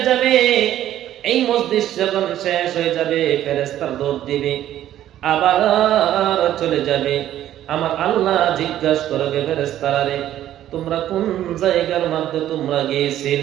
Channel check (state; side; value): quieter; left; 12.3 dB